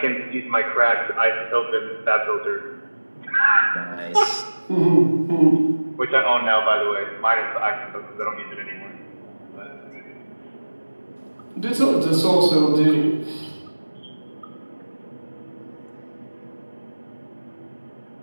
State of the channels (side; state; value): both; inverted; correlation -1.00